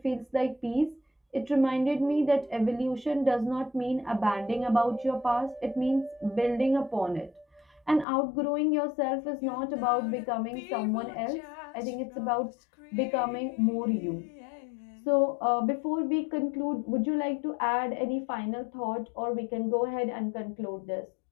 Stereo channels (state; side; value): drops out; right; at 8.1 s